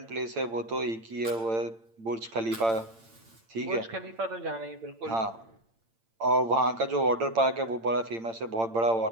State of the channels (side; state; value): left; late; 8.8 ms